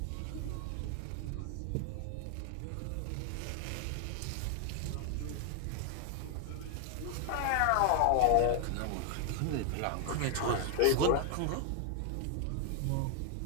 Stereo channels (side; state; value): both; different; correlation 0.00